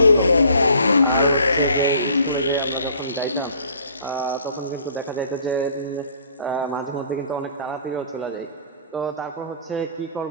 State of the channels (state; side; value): inverted; both; correlation -0.54